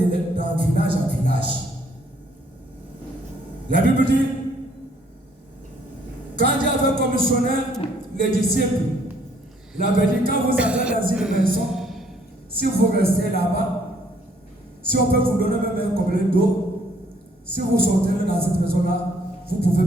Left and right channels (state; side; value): normal; both; correlation 0.65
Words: village à village. La Bible dit, quand Dieu avait commissionné les disciples, il avait dit, quand vous allez dans une maison, si vous restez là-bas, si on peut vous donner même un gobelet d'eau, si vous sortez dans cette maison-là, vous pouvez